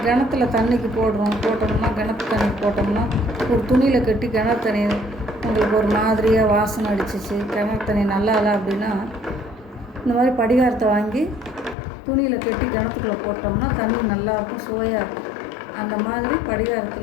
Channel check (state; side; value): drops out; right; at 11.8 s